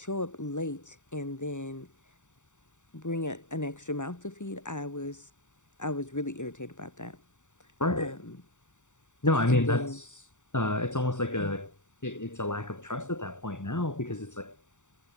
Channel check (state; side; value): late; right; 0.85 ms